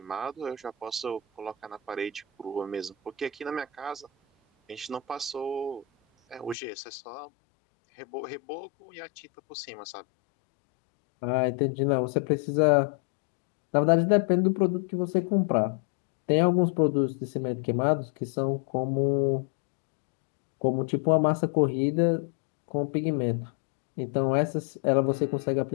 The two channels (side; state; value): right; drops out; at 6.6 s